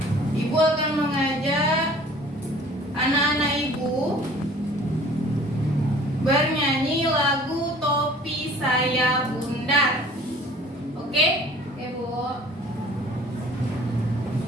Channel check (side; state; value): both; normal; correlation 0.50